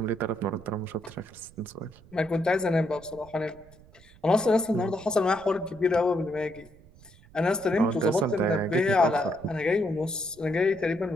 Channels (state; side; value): noise; right; rumble, 24 dB below the sound